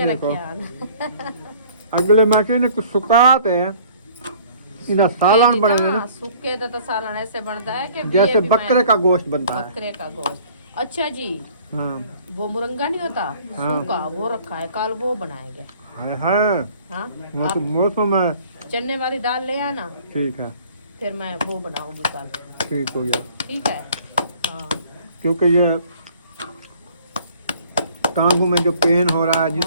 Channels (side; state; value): both; inverted; correlation -0.54